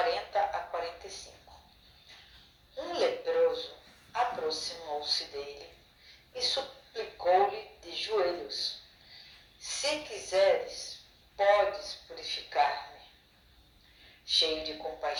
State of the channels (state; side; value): identical; both; correlation 1.00